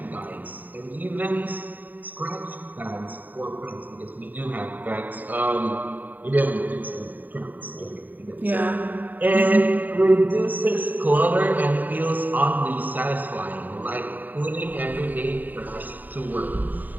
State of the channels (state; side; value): late; left; 0.086 ms